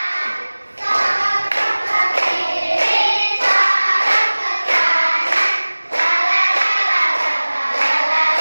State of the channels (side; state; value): both; inverted; correlation -1.00